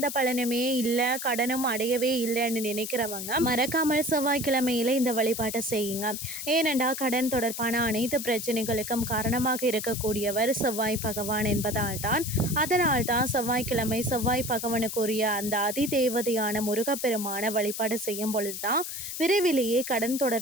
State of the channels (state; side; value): noise; left; hiss, 6 dB below the sound